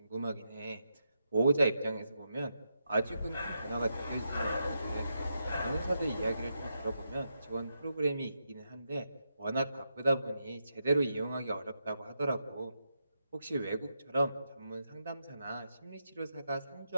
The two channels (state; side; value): inverted; both; correlation -0.85